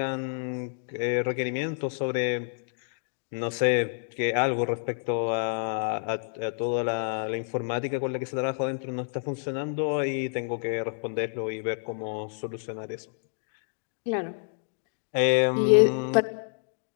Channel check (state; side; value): silent; right; digital silence